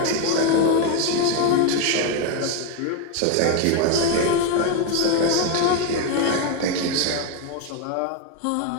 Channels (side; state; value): both; different; correlation 0.01